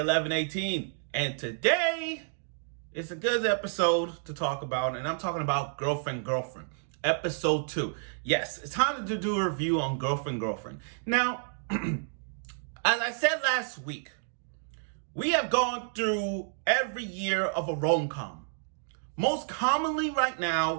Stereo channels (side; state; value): left; silent; digital silence